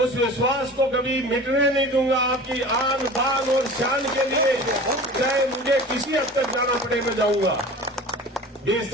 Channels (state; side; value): normal; both; correlation 0.38